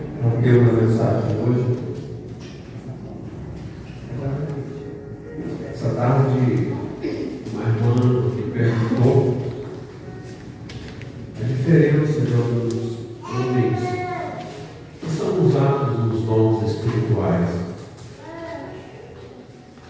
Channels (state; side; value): identical; both; correlation 1.00